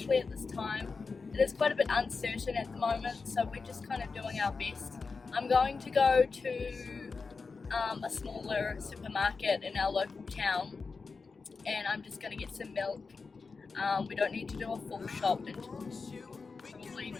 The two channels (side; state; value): right; quieter; 4.6 dB